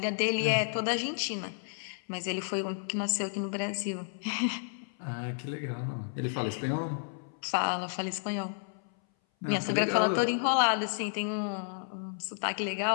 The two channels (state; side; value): silent; right; 57 dB below the other